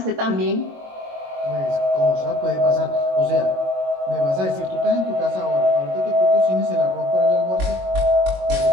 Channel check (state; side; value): late; left; 22 ms